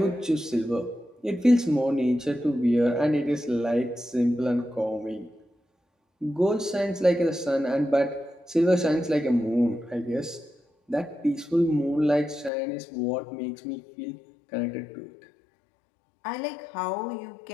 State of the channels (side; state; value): right; drops out; at 12.5 s